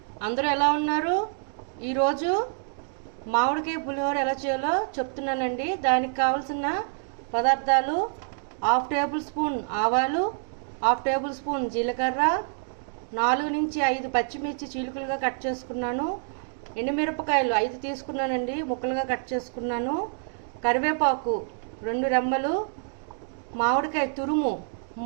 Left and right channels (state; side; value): silent; left; 60 dB below the other